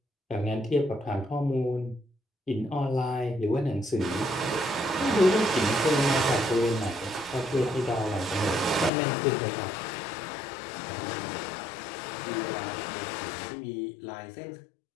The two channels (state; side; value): drops out; right; at 8.9 s